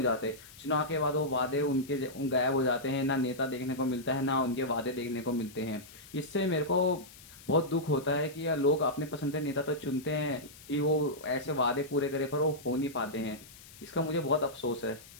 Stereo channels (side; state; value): left; noise; hiss, 20 dB below the sound